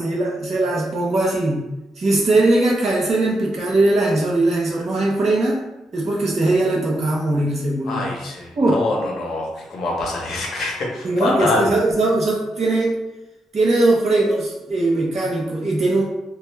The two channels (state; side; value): normal; both; correlation 0.83